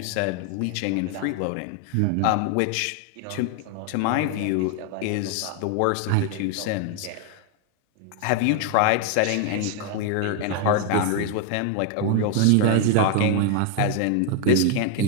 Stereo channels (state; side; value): different; both; correlation 0.00